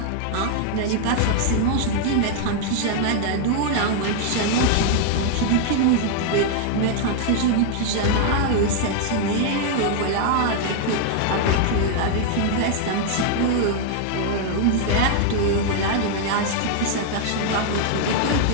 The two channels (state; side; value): different; both; correlation 0.00